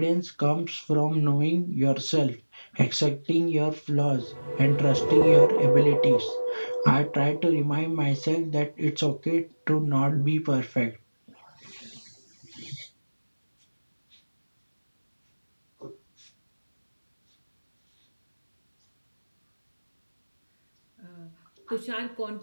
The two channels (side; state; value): both; inverted; correlation -1.00